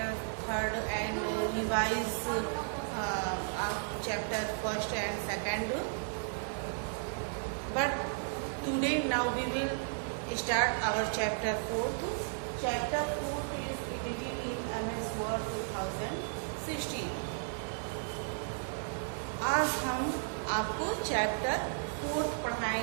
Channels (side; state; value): left; silent; 55 dB below the other